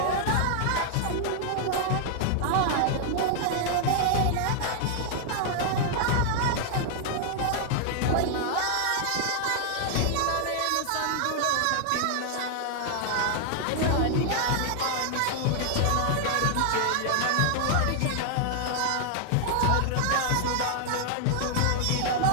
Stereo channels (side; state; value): both; different; correlation 0.00